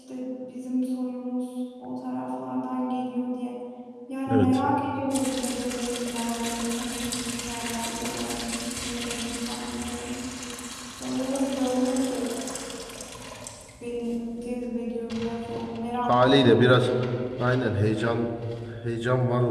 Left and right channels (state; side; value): identical; both; correlation 1.00